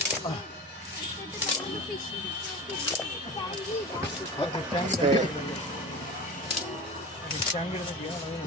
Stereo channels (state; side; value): normal; both; correlation 0.32